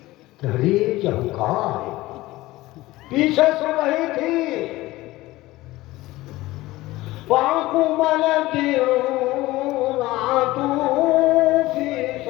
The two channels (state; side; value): quieter; right; 18.3 dB